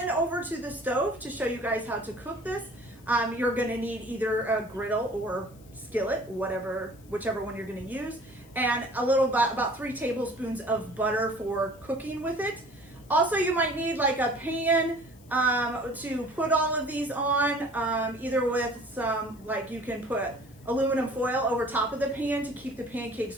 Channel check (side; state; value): left; noise; hiss, 27 dB below the sound